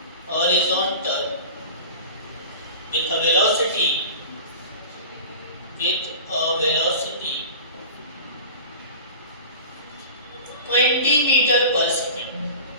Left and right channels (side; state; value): both; inverted; correlation -0.36